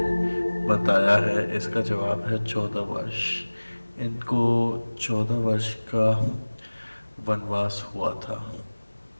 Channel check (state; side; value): inverted; both; correlation -1.00